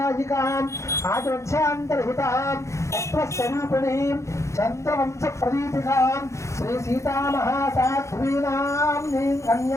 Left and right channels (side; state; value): right; late; 0.14 ms